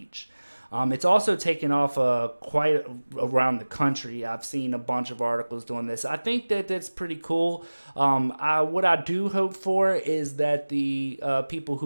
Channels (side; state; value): both; inverted; correlation -1.00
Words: It's also taken off quite around the country. I've seen a bunch of articles doing this. I think that that's pretty cool. What I do hope for is that the people